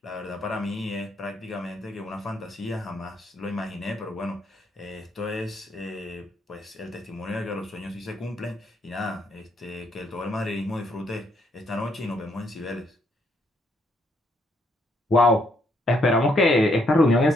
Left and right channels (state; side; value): normal; both; correlation 0.73